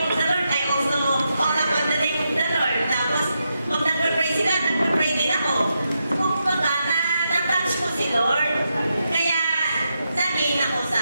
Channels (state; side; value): inverted; both; correlation -0.85